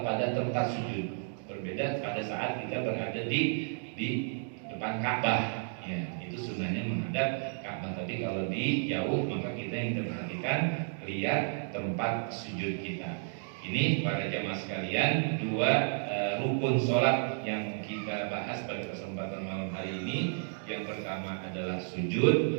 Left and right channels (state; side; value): silent; left; 56 dB below the other